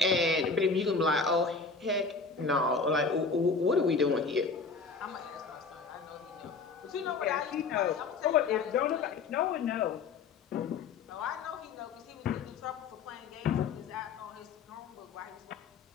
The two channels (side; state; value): right; quieter; 4.7 dB